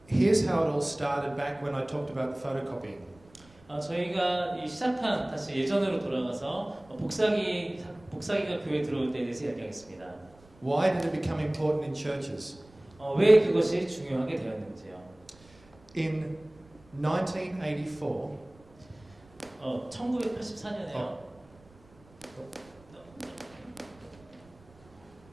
here's how it all started back when I talked about the photocopying. 저희가 이 시작한 다시 예전으로 돌아가서 복사기가 교회에 들어올 때에 대해서 이야기하겠습니다. Why did it become important in churches? 왜 그것이 중요하게 되었는지요. In 1984, 1984년에요.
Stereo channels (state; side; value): noise; right; rumble, 26 dB below the sound